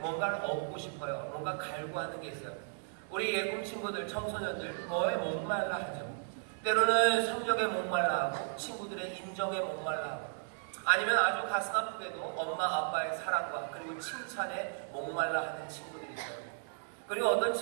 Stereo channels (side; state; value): left; silent; 54 dB below the other